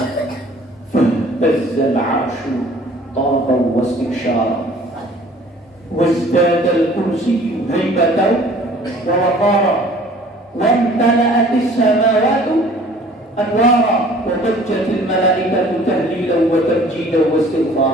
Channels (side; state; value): both; normal; correlation 0.52